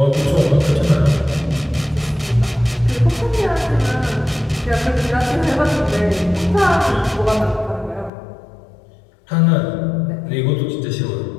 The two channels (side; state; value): right; drops out; at 8.1 s